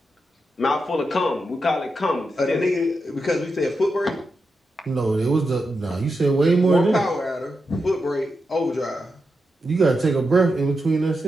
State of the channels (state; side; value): normal; both; correlation 0.87